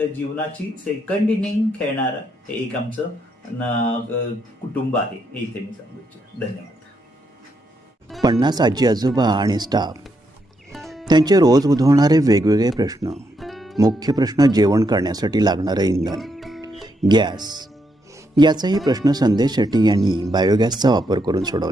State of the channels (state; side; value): normal; both; correlation 0.79